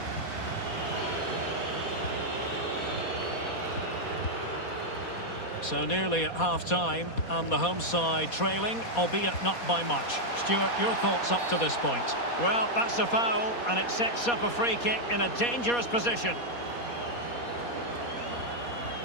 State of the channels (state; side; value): late; right; 4.2 ms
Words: So nearly at half-time, and the home side trailing, albeit not by much. Stuart, your thoughts up to this point? Well, that's a foul, and it sets up a free kick in a dangerous position.